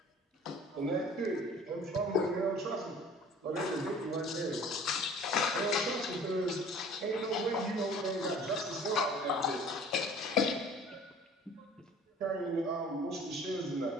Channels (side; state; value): both; normal; correlation 0.48